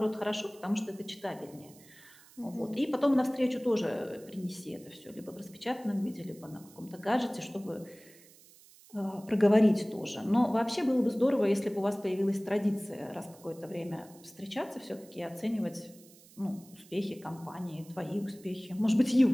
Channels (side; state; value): right; noise; hiss, 24 dB below the sound